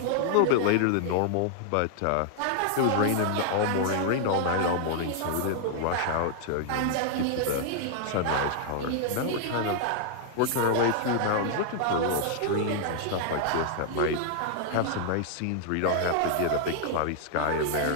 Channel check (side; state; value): both; different; correlation 0.00